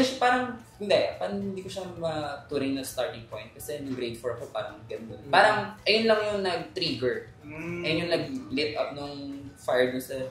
siya parang hindi ko siya maturing na starting point kasi nung grade 4 ako parang ganda. Parang ayun lang yung nag-trigger. Ayun yung nag-lit up nung fire dun sa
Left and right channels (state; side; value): identical; both; correlation 1.00